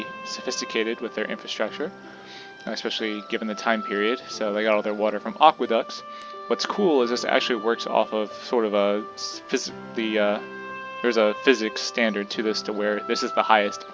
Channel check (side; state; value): both; identical; correlation 1.00